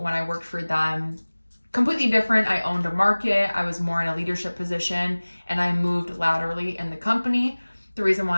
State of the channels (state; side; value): inverted; both; correlation -1.00